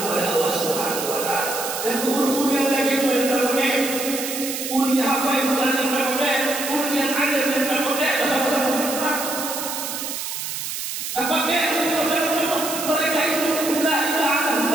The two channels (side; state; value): right; noise; hiss, 5 dB below the sound